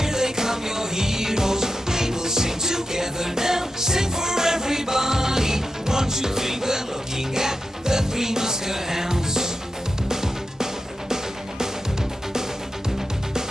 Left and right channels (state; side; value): normal; both; correlation 0.89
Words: they come, your heroes. We will sing together now. Sing for everybody. 1, 2, 3, we're looking at the Three Muskehounds.